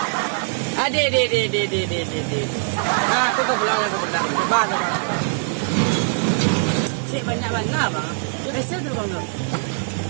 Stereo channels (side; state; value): left; silent; 64 dB below the other